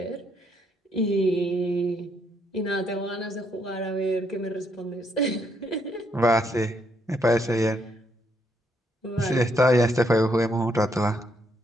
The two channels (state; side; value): normal; both; correlation 0.73